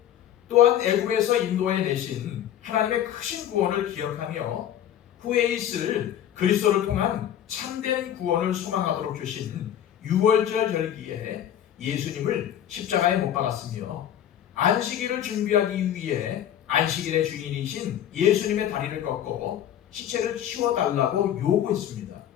또한 애굽에서 인도해 내신 하나님의 크신 구원을 기억하며 후에 있을 그리스도를 통한 참된 구원을 소망하도록 주신 유월절 절기에 예수님을 십자가에 못 박았으며 안식일을 준비하기 위해 안식일의 주인이신 예수님의 다리를 꺾고 시체를 치워달라고 요구했습니다.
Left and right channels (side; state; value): right; quieter; 10.7 dB